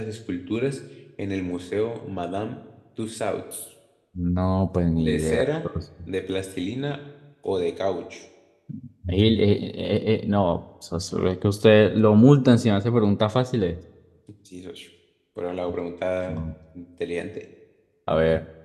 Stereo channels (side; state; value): both; identical; correlation 1.00